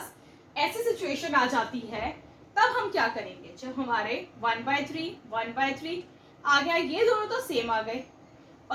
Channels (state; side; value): identical; both; correlation 1.00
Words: ऐसी सिचुएशन आ जाती है तब हम क्या करेंगे, जब हमारे 1/3, 1/3 आ गया, ये दोनों तो सेम आ गए